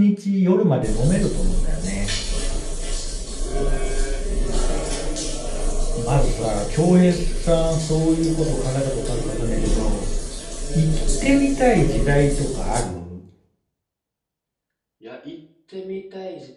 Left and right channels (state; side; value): identical; both; correlation 1.00